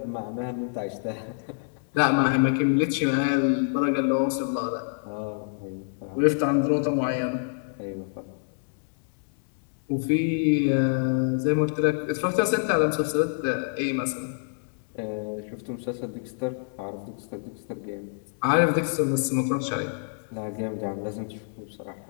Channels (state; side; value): silent; right; digital silence